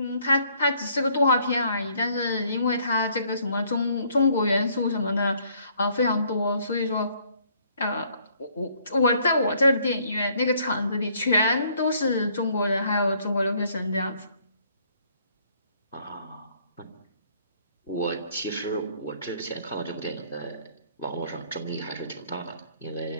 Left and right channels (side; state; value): both; inverted; correlation -0.64